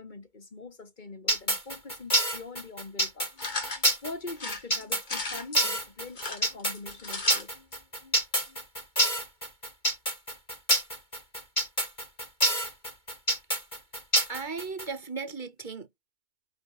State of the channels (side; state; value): right; late; 2.2 ms